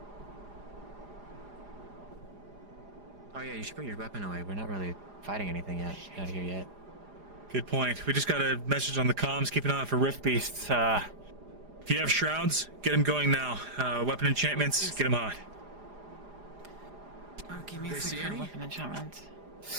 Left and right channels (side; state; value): left; late; 4.9 ms